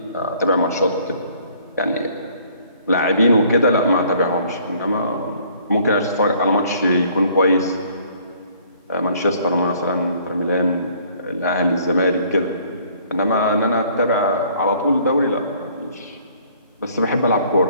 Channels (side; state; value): both; inverted; correlation -0.59